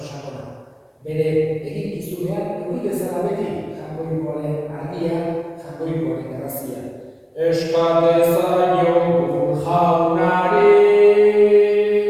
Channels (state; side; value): identical; both; correlation 1.00